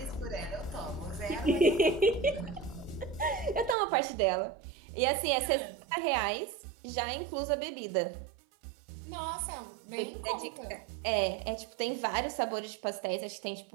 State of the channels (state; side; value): drops out; left; at 3.8 s